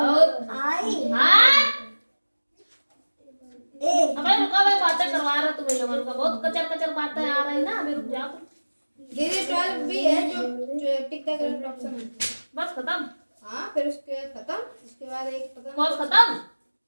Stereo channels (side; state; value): both; inverted; correlation -1.00